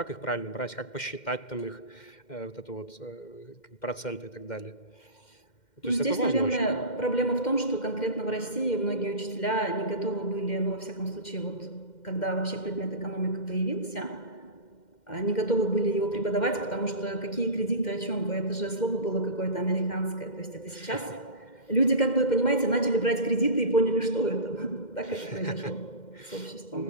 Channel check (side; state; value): right; late; 2.1 ms